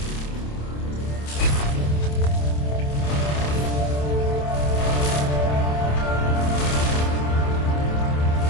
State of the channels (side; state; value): right; late; 27 ms